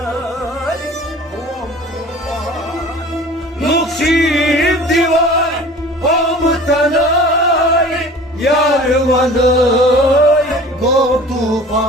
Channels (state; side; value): normal; both; correlation 0.43